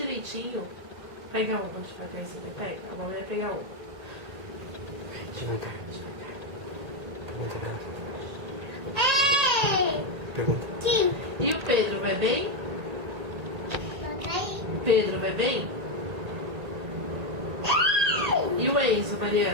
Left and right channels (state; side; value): late; left; 1.8 ms